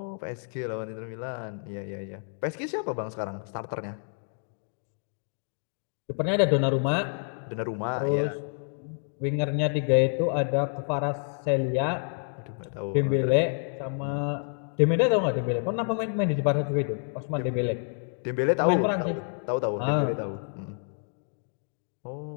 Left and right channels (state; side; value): silent; right; 55 dB below the other